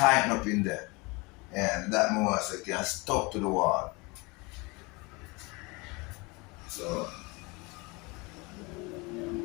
up in there, and that more so it can stuck to the wall. So.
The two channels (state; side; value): quieter; right; 26.4 dB